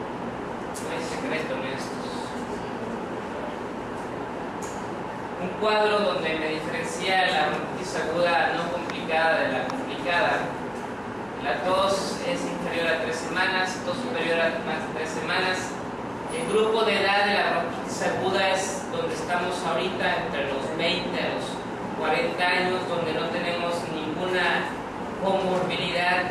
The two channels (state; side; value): identical; both; correlation 1.00